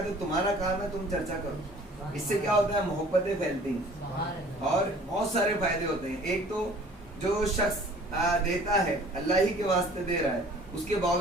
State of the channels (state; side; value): normal; both; correlation 0.51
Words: تو تمہارا کام ہے تم چرچا کرو۔ اس سے کیا ہوتا ہے؟ محبتیں پھیلتی ہیں اور بہت سارے فائدے ہوتے ہیں۔ ایک تو جو شخص دیتا ہے اللہ ہی کے واسطے دے رہا ہے، اس کے